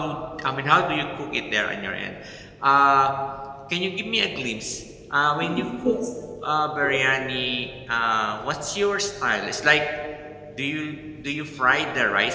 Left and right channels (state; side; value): identical; both; correlation 1.00